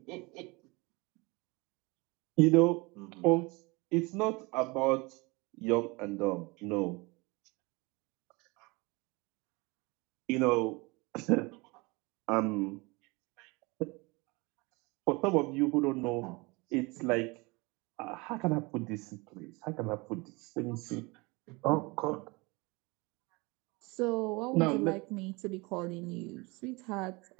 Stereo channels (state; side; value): quieter; left; 25.9 dB